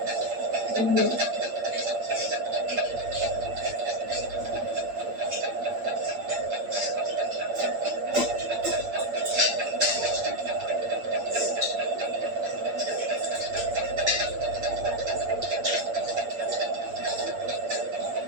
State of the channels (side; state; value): left; late; 8.6 ms